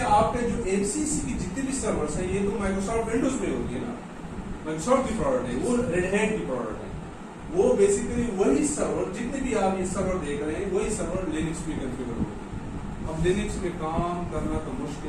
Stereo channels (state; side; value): identical; both; correlation 1.00